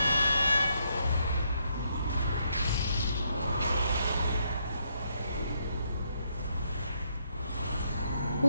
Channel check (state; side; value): inverted; both; correlation -0.75